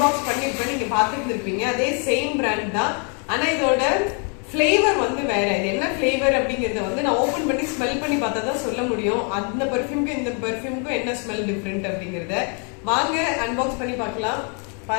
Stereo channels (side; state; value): right; quieter; 39.0 dB